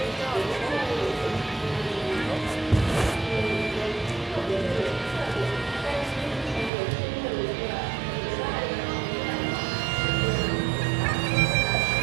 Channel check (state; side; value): drops out; left; at 6.7 s